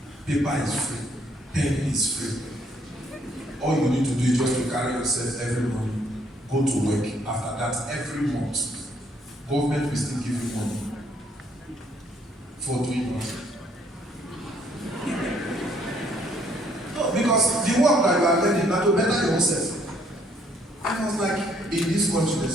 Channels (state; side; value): normal; both; correlation 0.66